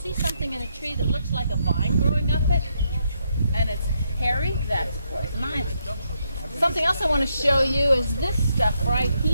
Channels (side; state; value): both; inverted; correlation -0.78